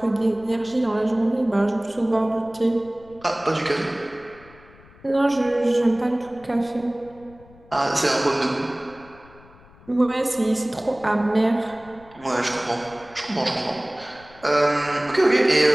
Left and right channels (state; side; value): noise; left; rumble, 24 dB below the sound